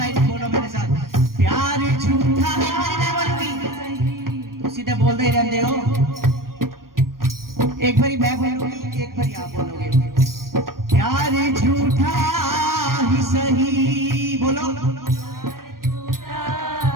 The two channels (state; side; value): late; left; 0.91 ms